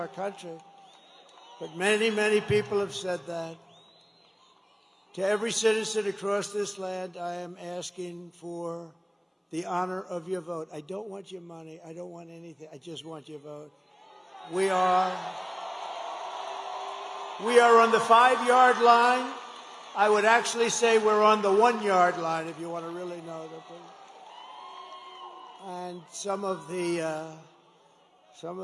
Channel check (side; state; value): both; identical; correlation 1.00